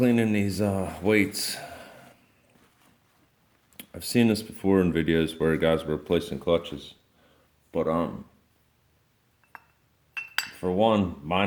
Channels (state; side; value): identical; both; correlation 1.00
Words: these weights, I've seen this before in videos where guys were replacing clutches, but for one,